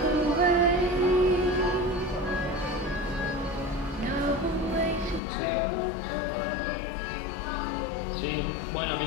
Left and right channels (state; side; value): drops out; right; at 5.2 s